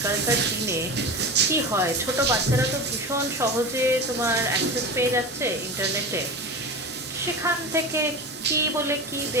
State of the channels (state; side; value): normal; both; correlation 0.28